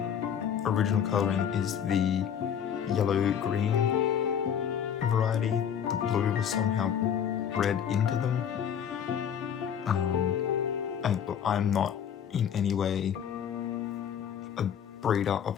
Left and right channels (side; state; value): right; quieter; 8.4 dB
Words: original colouring is the yellow-green variety. The blue was somehow bred into them. And look, I'm not in any way a breeder of